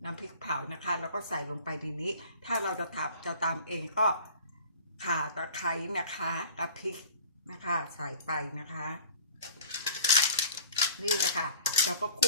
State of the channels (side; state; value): both; inverted; correlation -0.45